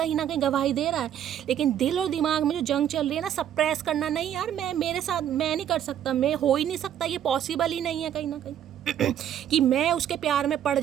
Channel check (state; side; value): quieter; left; 10.2 dB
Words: ना कहीं गवाही दे रहा है, लेकिन दिल और दिमाग में जो जंग चल रही है ना, सप्रेस करना, नहीं यार मैं मेरे साथ मैं नहीं कर सकता, मैं हो ही नहीं सकता, ये पॉसिबल ही नहीं है कहीं ना कहीं कि मैं उसके प्यार में पड़